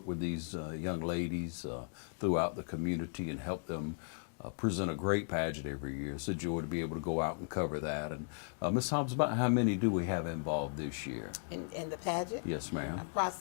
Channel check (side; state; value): right; silent; digital silence